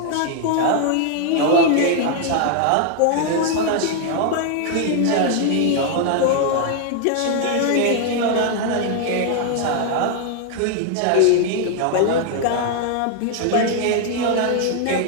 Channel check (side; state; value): both; different; correlation 0.00